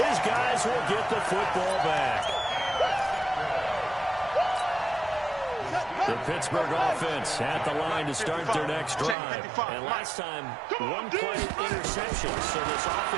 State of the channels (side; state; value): left; drops out; at 9.2 s